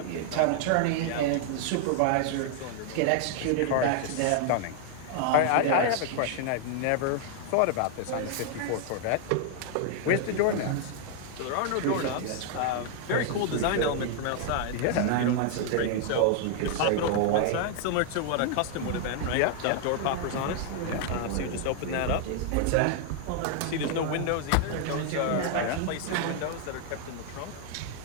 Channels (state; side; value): different; both; correlation 0.00